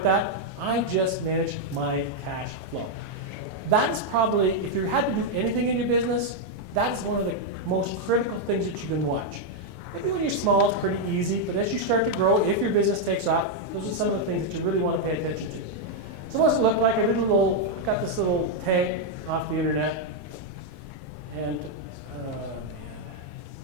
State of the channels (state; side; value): normal; both; correlation 0.00